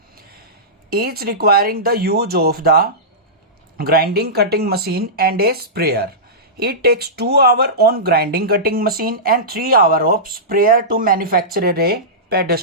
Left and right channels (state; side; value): normal; both; correlation -0.17